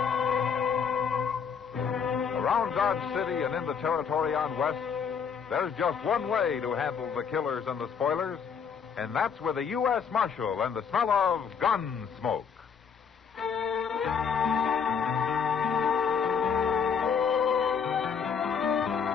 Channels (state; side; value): quieter; right; 6.6 dB